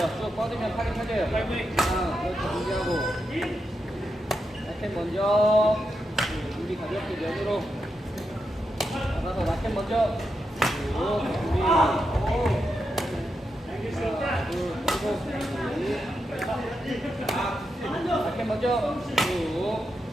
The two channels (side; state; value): both; normal; correlation 0.86